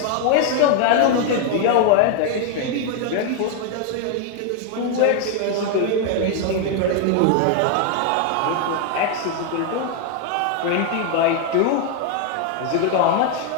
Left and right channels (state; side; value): different; both; correlation 0.00